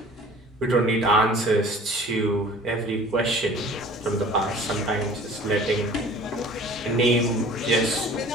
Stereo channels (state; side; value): normal; both; correlation 0.46